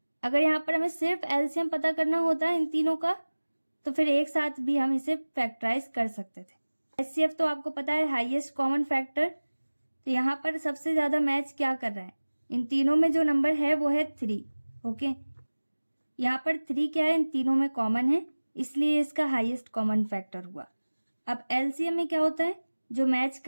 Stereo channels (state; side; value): inverted; both; correlation -1.00